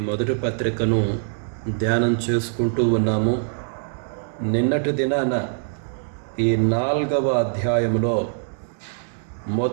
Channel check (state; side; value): silent; left; digital silence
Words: మొదటి పత్రికను ధ్యానం చేసుకుంటూ ఉన్నాము. నిన్నటి దినాన ఈ 4వ అధ్యాయంలో